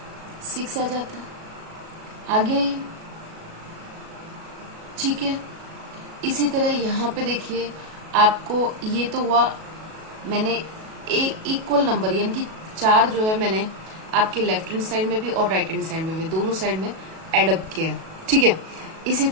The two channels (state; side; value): late; left; 37 ms